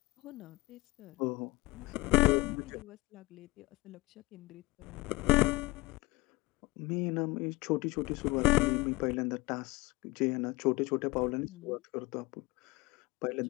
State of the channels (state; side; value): quieter; right; 23.0 dB